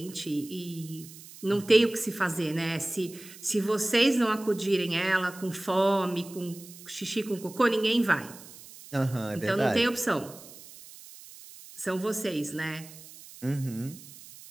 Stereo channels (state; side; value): noise; right; hiss, 18 dB below the sound